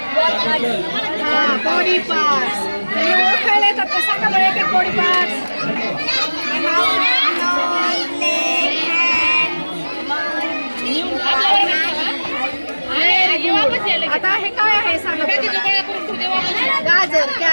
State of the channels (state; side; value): inverted; both; correlation -1.00